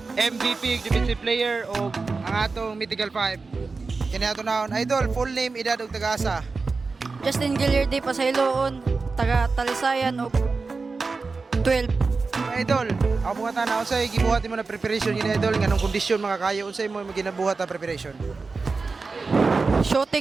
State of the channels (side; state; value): left; quieter; 4.2 dB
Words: MVP, defensive player o ang atong Mythical 5. Kini ato naon, idol, full name, edad ug tagasa. Justin Gilliardi Pasayloon, taga Talisayan og 12. Idol, ako mga tanaw unsay gibuhat mo na preparation ni idol nganong kondisyon makakayo unsay mo ginabuhat na preparation?